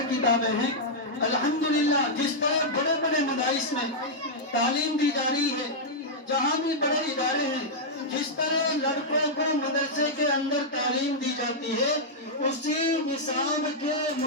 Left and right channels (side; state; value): both; normal; correlation -0.06